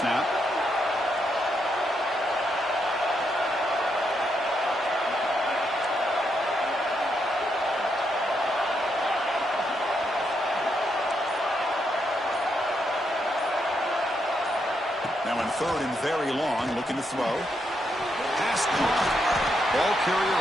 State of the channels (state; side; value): normal; both; correlation 0.79